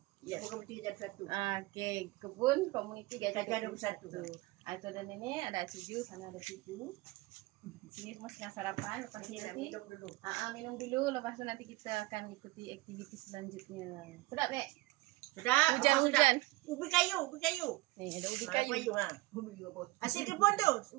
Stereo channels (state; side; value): quieter; left; 20.9 dB